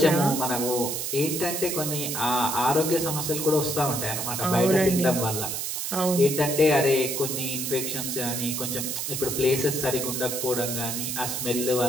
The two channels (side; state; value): right; noise; hiss, 3 dB below the sound